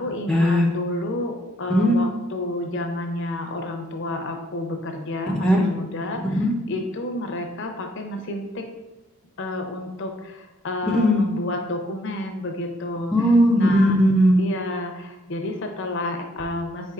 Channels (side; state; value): both; normal; correlation 0.68